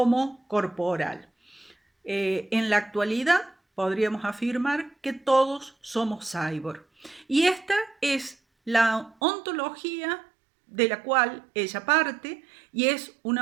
corporal. En la actualidad podríamos afirmar que todos somos cyborg. Y esta es la ontología de la cual ella parte, y es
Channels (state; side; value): drops out; left; at 9.2 s